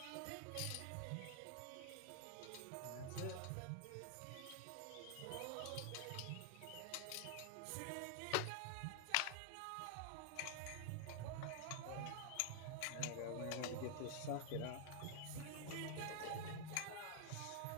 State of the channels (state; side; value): different; both; correlation -0.01